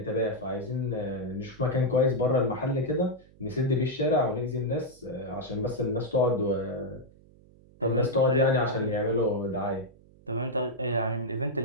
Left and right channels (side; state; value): right; noise; hum, 26 dB below the sound